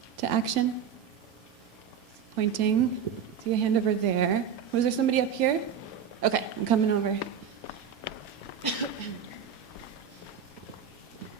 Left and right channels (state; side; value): quieter; left; 7.7 dB